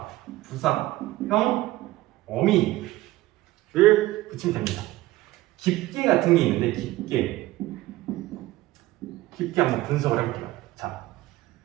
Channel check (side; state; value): left; quieter; 17.2 dB